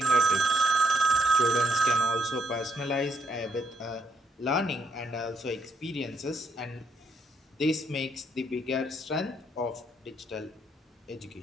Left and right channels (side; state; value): both; normal; correlation 0.72